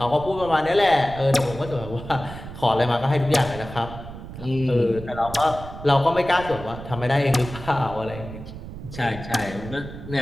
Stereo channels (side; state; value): right; noise; rumble, 12 dB below the sound